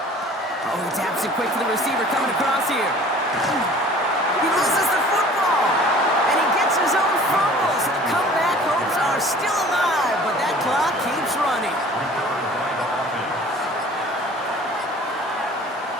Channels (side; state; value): both; normal; correlation 0.47